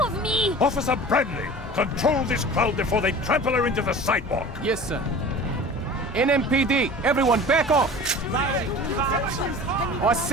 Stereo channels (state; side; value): normal; both; correlation 0.40